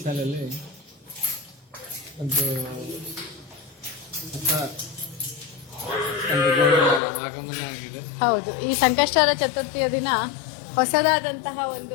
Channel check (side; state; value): right; drops out; at 7.0 s